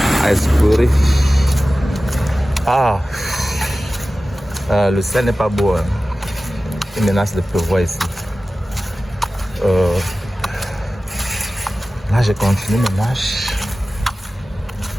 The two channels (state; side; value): normal; both; correlation 0.96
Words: à explorer. Ah, le ciel n'est pas beau. Hein. Il menace de pleuvoir ici. Là, je continue mes marches.